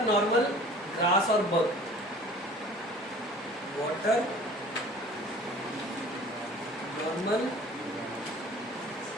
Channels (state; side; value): normal; both; correlation 0.46